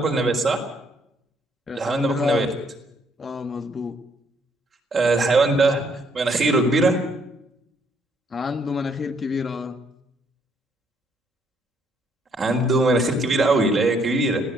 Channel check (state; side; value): normal; both; correlation 0.69